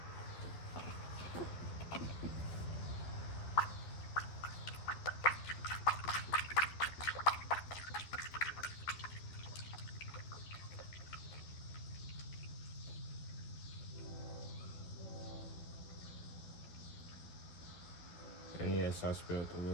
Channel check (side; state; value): right; late; 12 ms